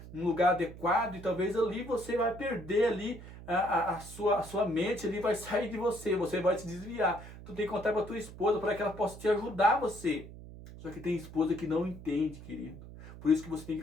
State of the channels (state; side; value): noise; right; hum, 15 dB below the sound